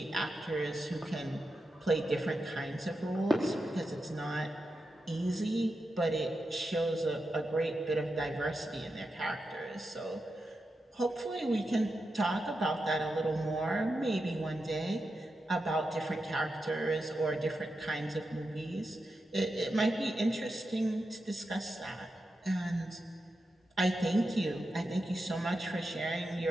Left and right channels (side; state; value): both; normal; correlation 0.89